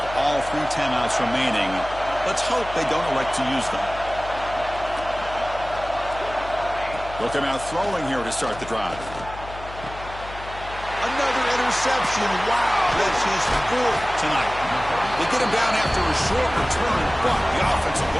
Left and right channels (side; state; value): left; noise; hum, 13 dB below the sound